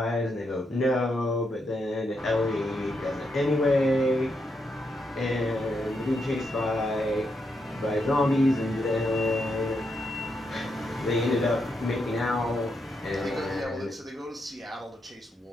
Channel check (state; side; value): normal; both; correlation 0.81